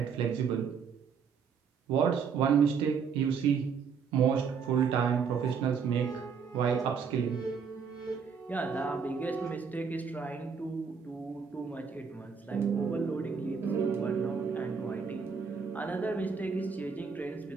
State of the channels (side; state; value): left; quieter; 6.1 dB